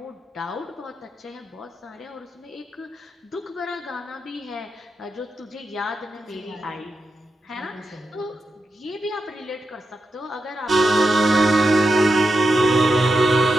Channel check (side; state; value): both; normal; correlation 0.87